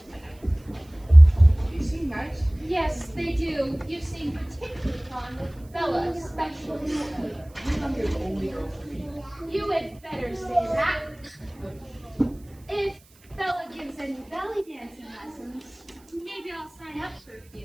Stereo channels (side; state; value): right; noise; hiss, 29 dB below the sound